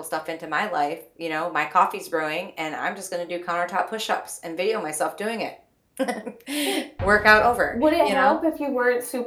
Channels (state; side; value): identical; both; correlation 1.00